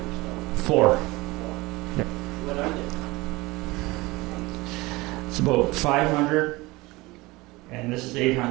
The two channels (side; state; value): left; quieter; 21.8 dB